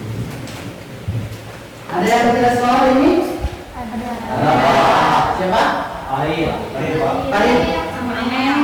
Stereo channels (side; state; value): both; identical; correlation 1.00